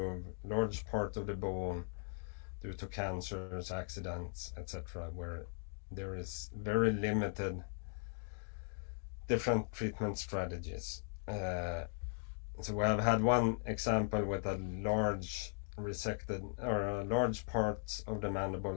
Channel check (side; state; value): right; silent; digital silence